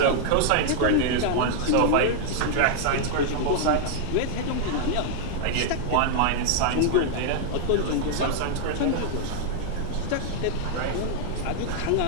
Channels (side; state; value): both; different; correlation -0.01